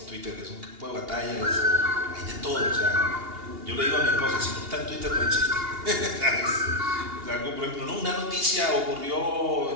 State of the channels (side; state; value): left; late; 2.8 ms